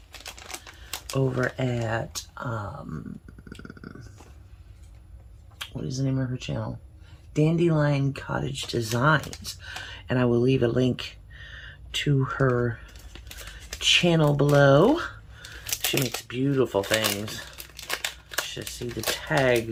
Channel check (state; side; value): identical; both; correlation 1.00